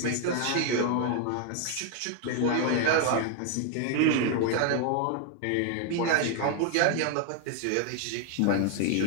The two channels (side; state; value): both; different; correlation 0.00